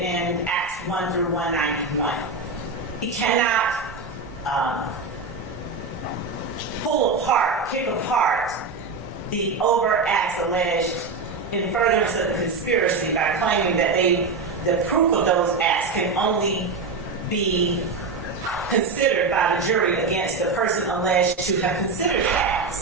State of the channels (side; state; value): left; quieter; 4.2 dB